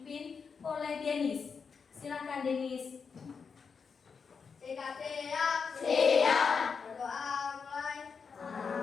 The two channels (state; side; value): quieter; right; 5.7 dB